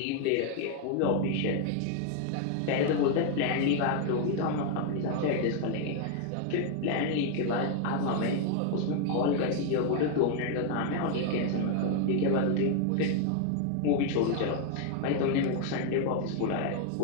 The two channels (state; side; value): different; both; correlation 0.00